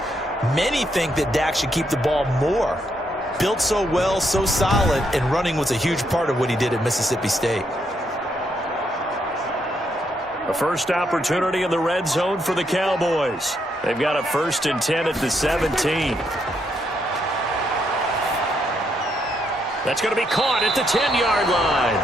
Many think that Dak should keep the ball more. Built so well, so solid, and running was a huge part of what he did at Mississippi State. A first opportunity in the red zone for the Cowboys. They've got a 1st and 10 at the 17. That's going to be caught at the 10-yard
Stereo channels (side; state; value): both; normal; correlation 0.77